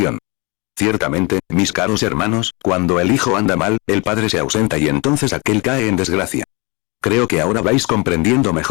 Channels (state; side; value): quieter; right; 28.2 dB